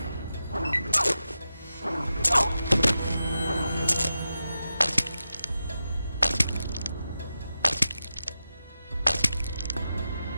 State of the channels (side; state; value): both; inverted; correlation -0.91